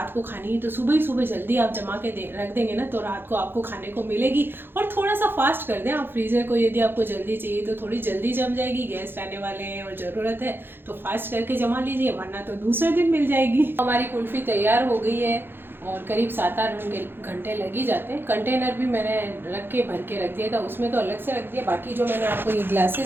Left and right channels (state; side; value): late; left; 0.10 ms